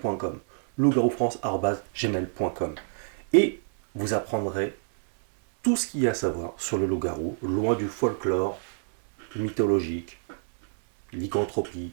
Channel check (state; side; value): silent; left; 60 dB below the other